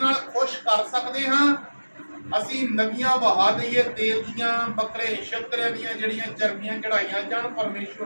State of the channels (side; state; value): both; inverted; correlation -1.00